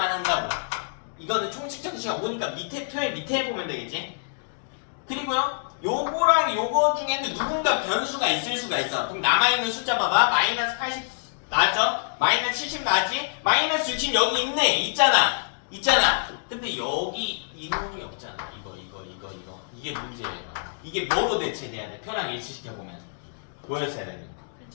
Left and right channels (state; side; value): silent; right; digital silence